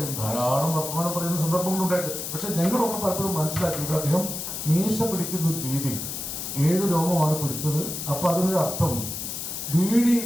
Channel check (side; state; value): left; noise; hiss, 5 dB below the sound